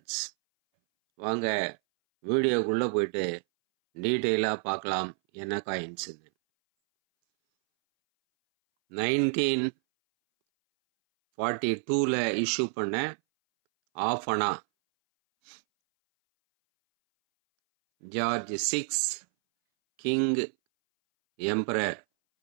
வாங்க வீடியோக்குள்ளே போயிட்டு டீட்டெயிலாக பார்க்கலாம் என்ன காயின்ஸுன்னு. 1942 இஷ்யூ பண்ண ஆஃப் அனா ஜார்ஜ் 6 கிங் எம்பரர்.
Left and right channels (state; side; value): silent; left; 59 dB below the other